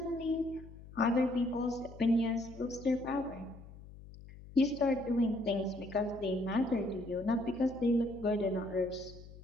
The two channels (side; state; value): left; noise; hum, 17 dB below the sound